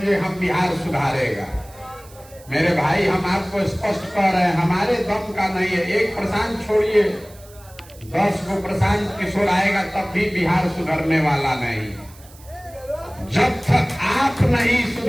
ये हम बिहार सुधारेगा। मेरे भाई, हम आपको स्पष्ट कह रहे हैं, हमारे दम का नहीं है। एक प्रशांत छोड़िए, 10 को प्रशांत किशोर आएगा तब भी बिहार सुधरने वाला नहीं। जब तक आप नहीं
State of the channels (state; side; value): noise; right; hiss, 23 dB below the sound